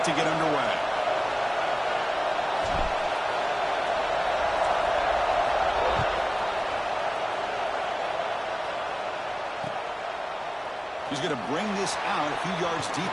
to get underway. He's going to bring this out a few yards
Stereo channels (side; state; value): both; identical; correlation 1.00